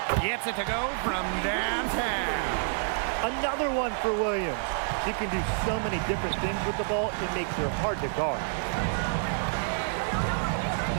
Gets it to go from downtown. Another one for Williams. She can do so many different things with the ball, it makes her hard to guard.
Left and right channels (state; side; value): silent; left; 59 dB below the other